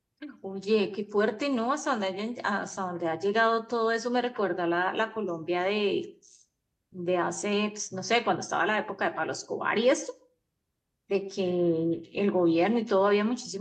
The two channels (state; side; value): identical; both; correlation 1.00